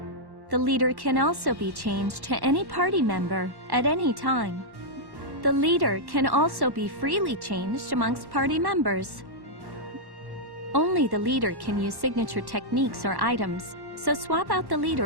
The leader can also be changed to any party member at any time. The leader can also be freely changed amongst party members. Only the leader can use signature techniques or items, so swap out the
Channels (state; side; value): late; left; 1.1 ms